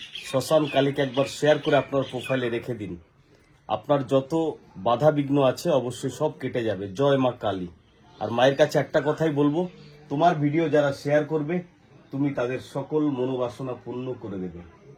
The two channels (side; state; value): both; identical; correlation 1.00